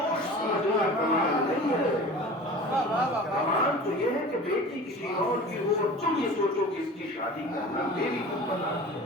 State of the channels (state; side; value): normal; both; correlation 0.39